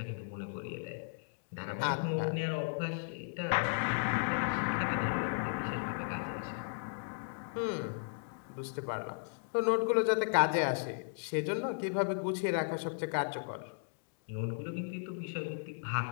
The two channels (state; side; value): silent; right; digital silence